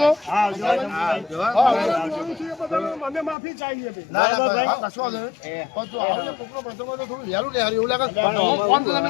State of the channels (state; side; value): drops out; right; at 3.4 s